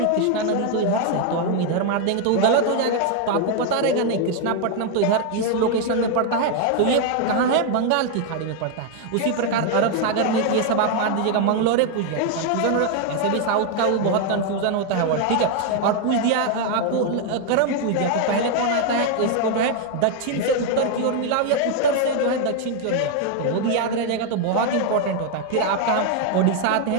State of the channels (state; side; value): different; both; correlation 0.00